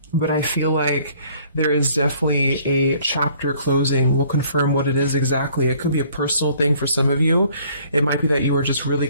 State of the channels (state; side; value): inverted; both; correlation -0.58